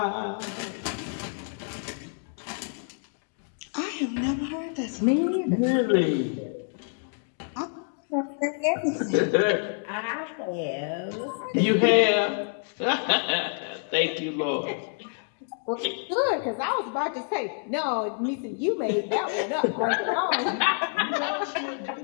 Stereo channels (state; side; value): silent; right; 60 dB below the other